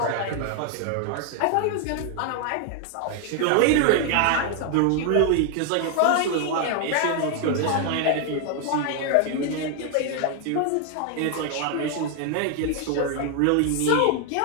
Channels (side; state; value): both; different; correlation 0.00